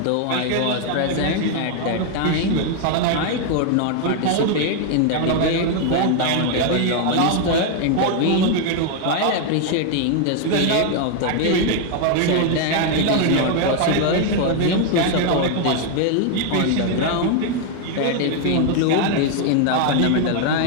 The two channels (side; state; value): both; different; correlation 0.00